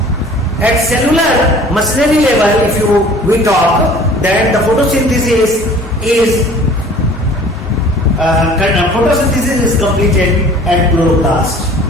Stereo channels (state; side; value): normal; both; correlation 0.49